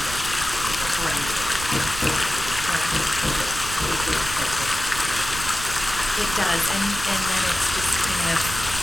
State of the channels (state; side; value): noise; right; rumble, 9 dB below the sound